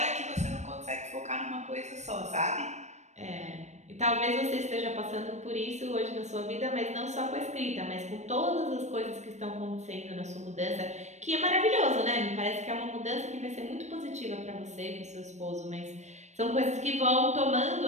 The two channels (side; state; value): left; late; 0.34 ms